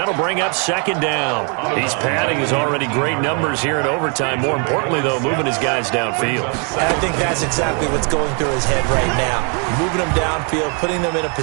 bring up 2nd down. He's padding his already great numbers here in overtime. More importantly, though, moving his guys downfield. And I think that's exactly what's going through his head right now. Moving them downfield, putting them in a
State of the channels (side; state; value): left; quieter; 37.5 dB